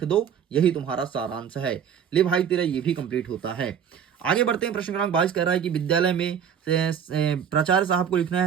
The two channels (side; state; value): left; quieter; 8.1 dB